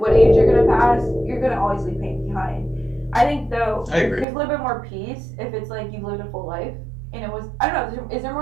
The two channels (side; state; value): left; drops out; at 4.2 s